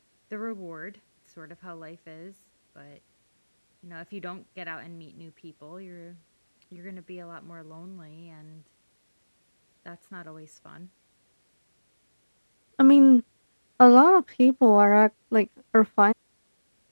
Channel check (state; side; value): inverted; both; correlation -1.00